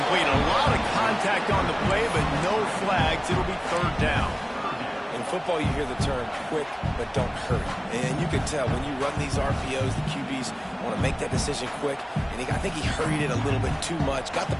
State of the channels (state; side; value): identical; both; correlation 1.00